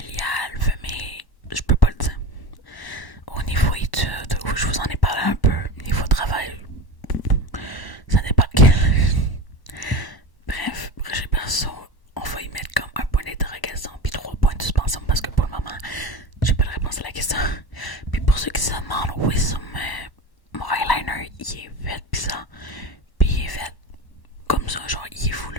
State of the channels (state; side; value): late; right; 1.0 ms